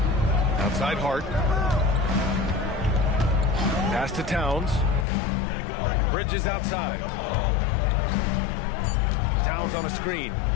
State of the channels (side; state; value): right; drops out; at 5.1 s